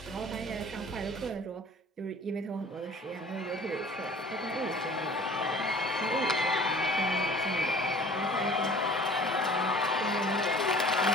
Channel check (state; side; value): normal; both; correlation 0.47